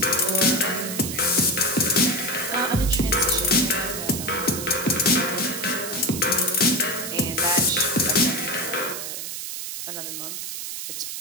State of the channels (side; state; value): right; noise; hiss, 6 dB below the sound